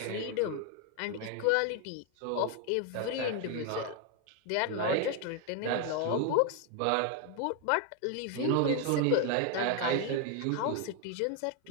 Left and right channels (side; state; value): both; different; correlation 0.01